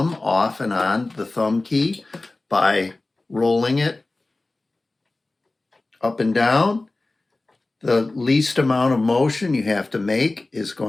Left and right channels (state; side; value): quieter; right; 3.1 dB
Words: off and on the thumb key by rolling it up and down. The least amount of motion you have to make is